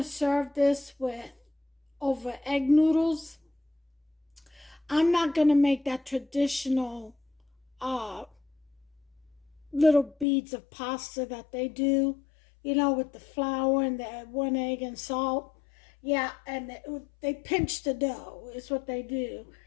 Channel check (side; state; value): right; drops out; at 10.2 s